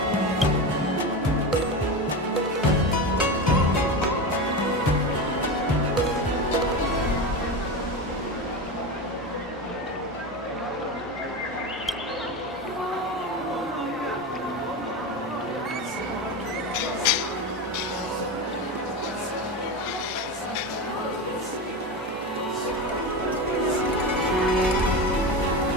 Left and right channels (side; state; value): both; normal; correlation 0.21